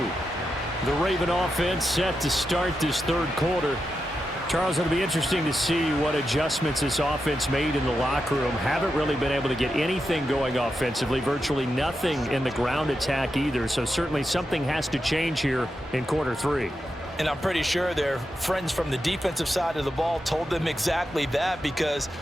The Raven offense set to start this third quarter. Charles, it'll be interesting to see what adjustments this offense made in the locker room. Haven't really been able to get anything going offensively, virtually nothing in the ground attack either. So certainly something has to change here in quarter 3. And I'm pretty sure their friends from the defensive side of the ball told them exactly that, because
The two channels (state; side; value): normal; both; correlation 0.88